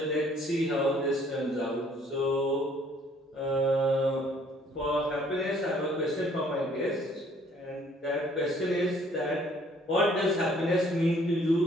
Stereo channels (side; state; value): both; normal; correlation 0.60